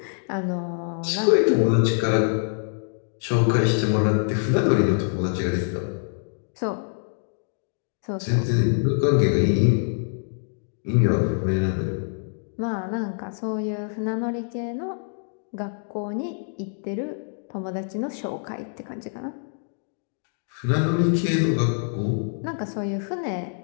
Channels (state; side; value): silent; right; digital silence